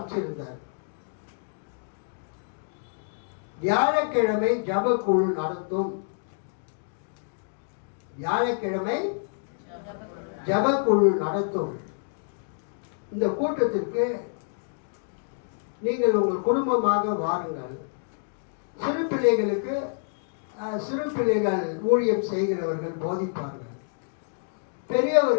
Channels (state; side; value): silent; right; digital silence